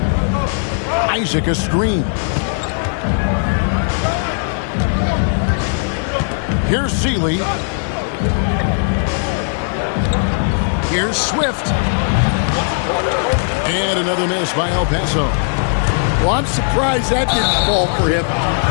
Isaac a screen. Here's Seeley. Here's Swift. And another miss by El Paso. Well, I'm surprised that didn't fall for him.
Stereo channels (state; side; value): silent; right; digital silence